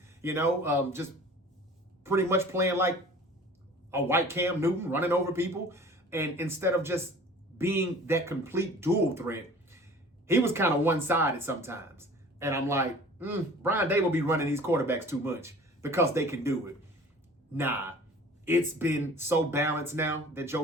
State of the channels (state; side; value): normal; both; correlation 0.45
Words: just pretty much playing like a white Cam Newton, running over people. And instead of just being that complete dual threat, he was kind of one-sided sometimes. And I'm like, Brian Daboll be running these quarterbacks too much because they can do it. Nah, it's been so balanced now that Joe